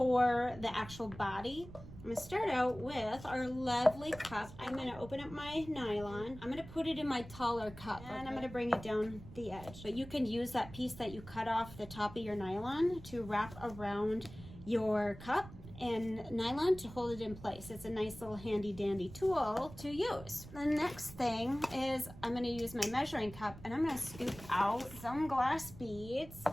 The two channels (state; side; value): noise; right; rumble, 15 dB below the sound